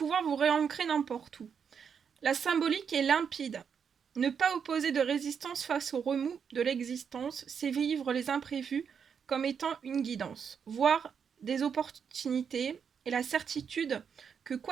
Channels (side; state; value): left; quieter; 6.9 dB